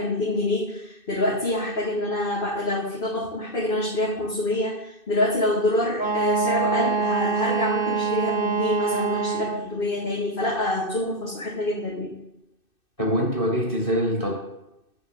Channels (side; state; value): right; late; 2.6 ms